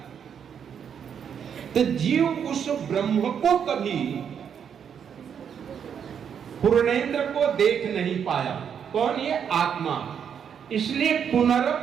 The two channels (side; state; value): left; quieter; 7.8 dB